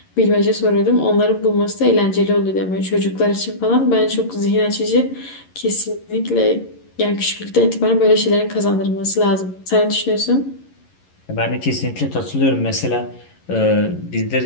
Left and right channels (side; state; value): right; late; 11 ms